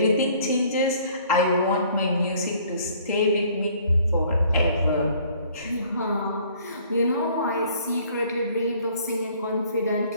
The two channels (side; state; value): both; inverted; correlation -0.57